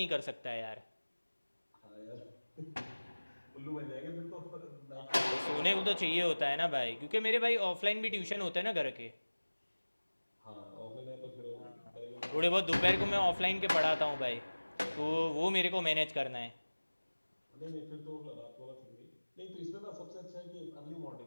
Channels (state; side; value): inverted; both; correlation -1.00